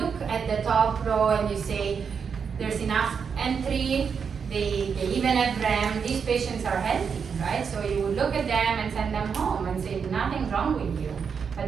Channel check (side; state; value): left; quieter; 6.4 dB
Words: at the top row and you say, there's enough entry, they even have REM, these patients are healthy, right? So you would look at them and send them home and say, nothing wrong with you. But